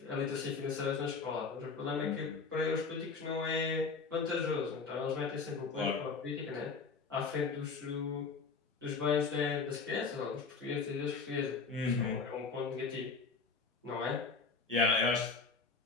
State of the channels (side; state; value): right; quieter; 4.7 dB